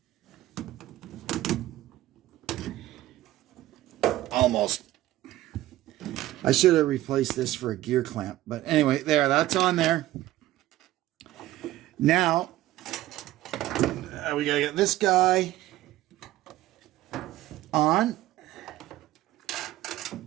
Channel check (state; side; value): quieter; left; 15.4 dB